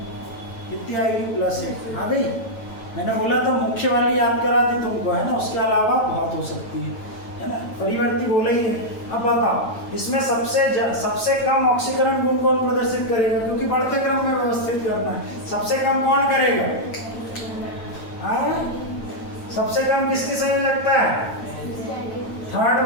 कितनी आएगी +8 आ गई। मैंने बोला तो मुख्य वाली याद करा दी तुमको, है ना, उसके अलावा बहुत हो सकती है ना, परिवर्ती बोले ही है। अब बताओ इसमें सबसे कम ऑक्सीकरण गुण कौन प्रदर्शित करेगा, क्योंकि बढ़ते क्रम में व्यवस्थित करना है, सबसे कम कौन करेगा, सबसे कम किसकी संयोजकता है, थर्ड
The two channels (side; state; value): right; late; 9.0 ms